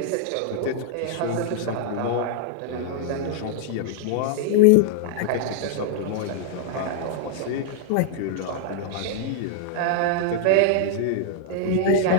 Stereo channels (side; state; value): both; different; correlation -0.01